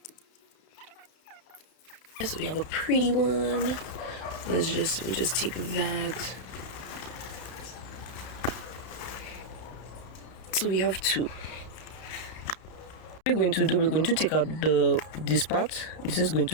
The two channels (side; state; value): right; late; 32 ms